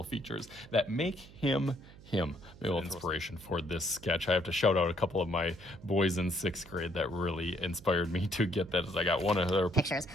features that make him him. Maybe inspiration for this sketch. I have to shout out a couple of my boys in 6th grade that really inspired me to get that. As I got one of their Pictures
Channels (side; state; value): right; noise; hum, 20 dB below the sound